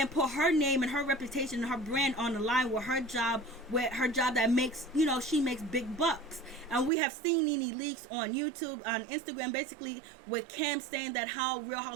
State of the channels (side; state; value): left; drops out; at 6.9 s